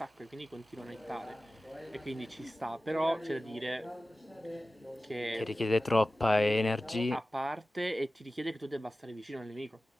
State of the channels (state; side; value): normal; both; correlation 0.96